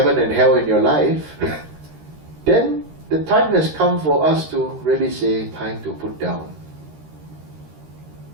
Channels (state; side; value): late; left; 13 ms